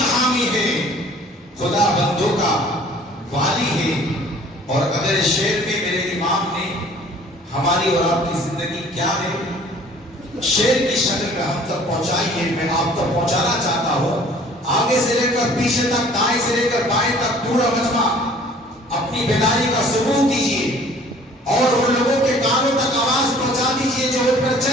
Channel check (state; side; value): normal; both; correlation 0.52